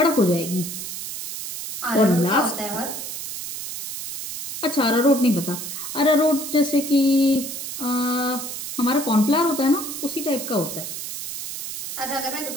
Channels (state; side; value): noise; right; hiss, 7 dB below the sound